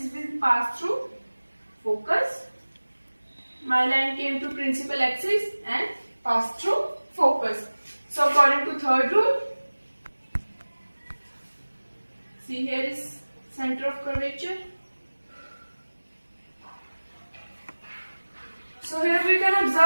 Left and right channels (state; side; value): inverted; both; correlation -1.00